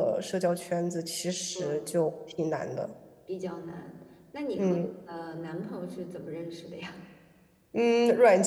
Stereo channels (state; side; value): identical; both; correlation 1.00